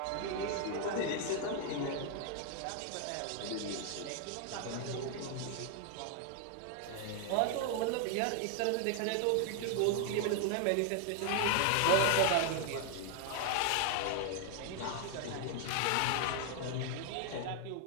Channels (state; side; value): different; both; correlation 0.00